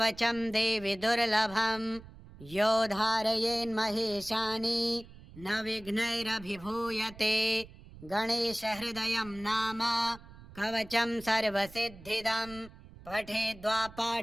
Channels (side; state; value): right; noise; rumble, 19 dB below the sound